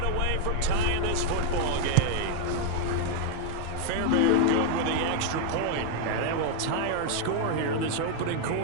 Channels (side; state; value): both; different; correlation 0.00